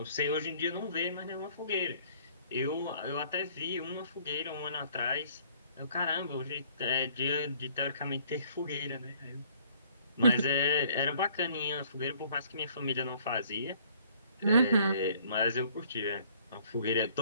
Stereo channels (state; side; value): inverted; both; correlation -0.59